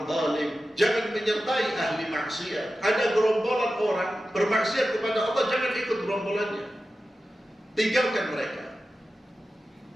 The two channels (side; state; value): both; normal; correlation 0.93